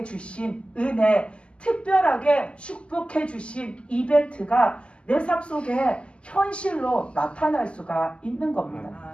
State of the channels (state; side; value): late; right; 0.054 ms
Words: 주신 은혜, 특별하게 축복해 주신 이벤트가 내 삶 속에 현실로 나타날 수가 있는 겁니다.